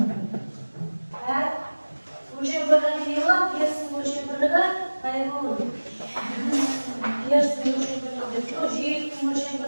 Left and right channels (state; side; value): inverted; both; correlation -1.00